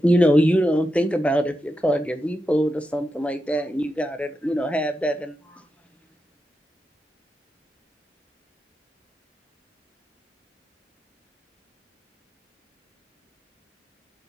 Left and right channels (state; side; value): normal; both; correlation 0.88